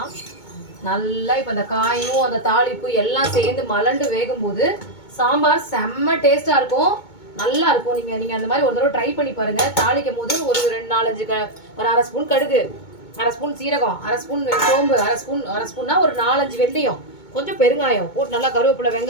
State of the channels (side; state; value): right; late; 2.2 ms